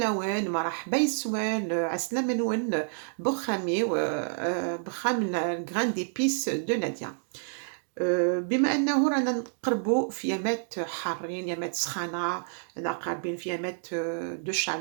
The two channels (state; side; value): silent; left; digital silence